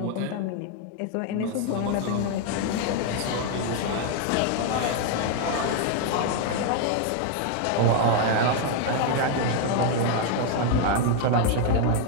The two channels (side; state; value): both; different; correlation 0.00